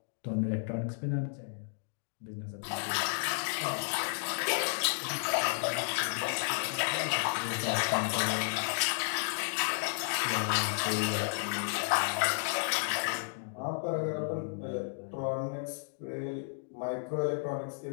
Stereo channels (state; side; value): silent; right; digital silence